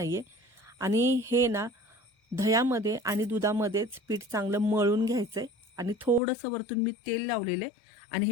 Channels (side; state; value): right; drops out; at 6.2 s